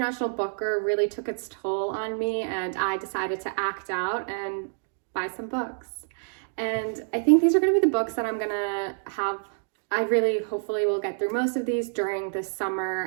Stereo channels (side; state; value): left; silent; digital silence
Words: Booker really took its toll on me and I decided to act out and buy some books. And I think these are going to be the books that I'm going to have. I really hopefully will get through most of these during this